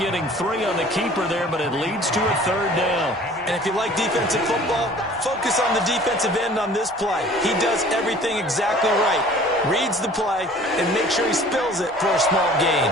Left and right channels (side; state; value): both; normal; correlation 0.49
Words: 3 on the keeper there, but it leads to a 3rd down. And if you like defensive football, focus on the defensive end on this play. He does everything exactly right. Reads the play and make sure he spills it for a small gain.